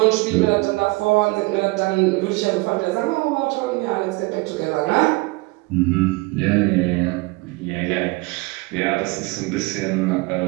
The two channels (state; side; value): quieter; left; 24.5 dB